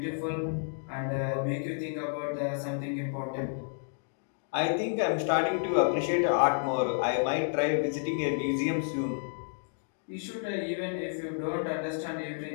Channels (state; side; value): silent; right; digital silence